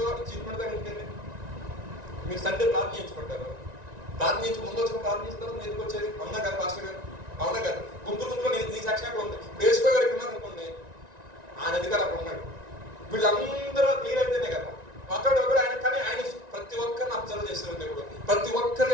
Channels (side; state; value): left; late; 1.9 ms